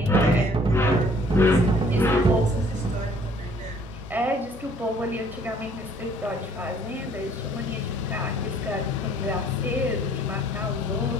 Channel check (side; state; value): both; normal; correlation 0.59